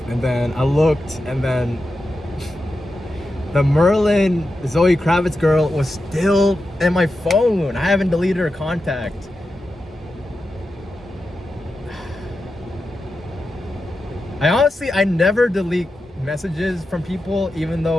and then I looked, and then the Merlin Zoe Kravitz girl was still in my phone. I haven't deleted her contact. I never delete messages from people, even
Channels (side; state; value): both; normal; correlation 0.90